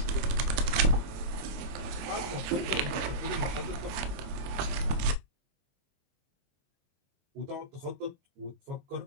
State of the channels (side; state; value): left; late; 23 ms